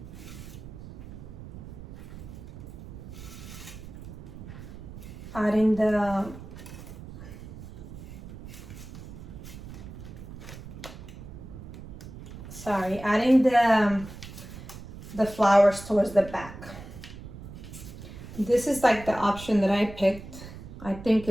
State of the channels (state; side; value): noise; right; rumble, 13 dB below the sound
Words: adding the flowers towards the back. This is like the option that I picked. I think